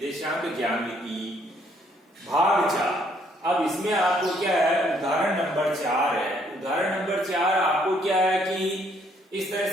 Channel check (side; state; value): both; normal; correlation 0.67